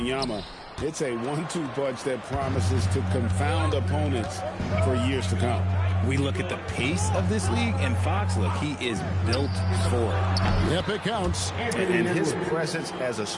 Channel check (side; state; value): both; identical; correlation 1.00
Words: It's a 1-2 punch that promises to confound opponents for years to come. We look at the pace of this league, and Fox, look, he is built for it. Yep, it counts. And his presence as a